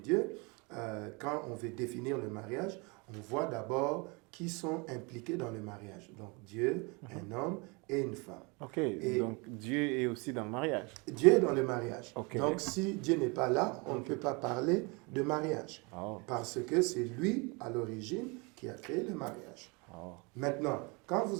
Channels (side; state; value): left; quieter; 29.3 dB